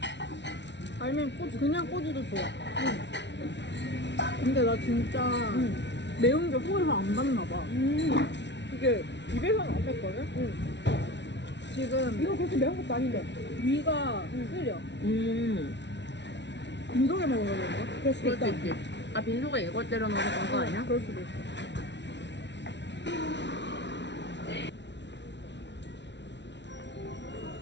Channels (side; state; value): right; late; 0.51 ms